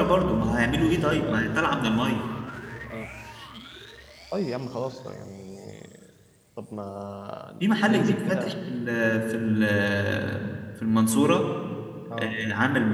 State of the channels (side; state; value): both; identical; correlation 1.00